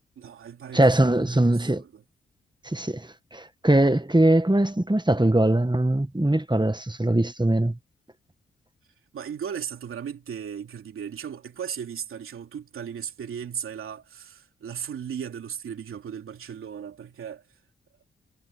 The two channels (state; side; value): normal; both; correlation 0.87